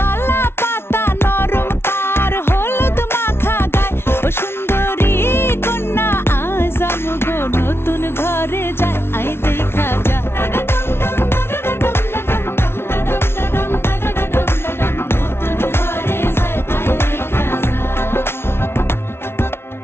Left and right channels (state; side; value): late; right; 0.12 ms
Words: পাতা নরম তার হলুদ মাখা গায়, ও সুন্দরী কন্যা আজ আমগো নতুন ঘরে যায়